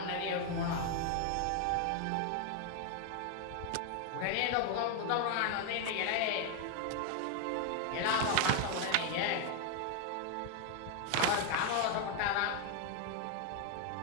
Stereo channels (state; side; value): different; both; correlation 0.01